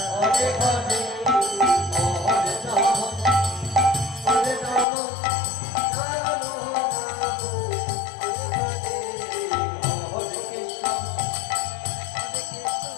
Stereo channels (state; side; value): drops out; right; at 4.9 s